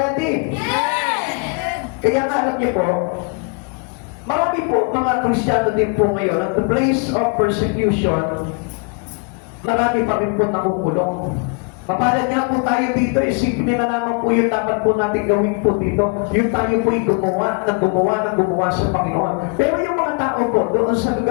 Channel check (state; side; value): quieter; right; 33.5 dB